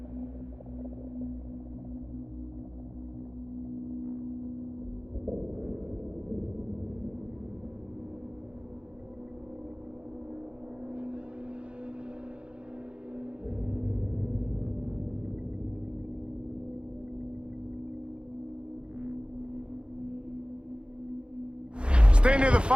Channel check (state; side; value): late; left; 0.056 ms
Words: Stay near the